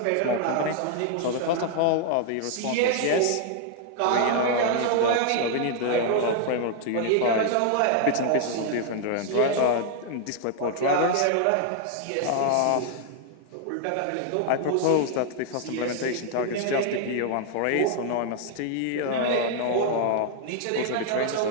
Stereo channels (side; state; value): both; different; correlation 0.00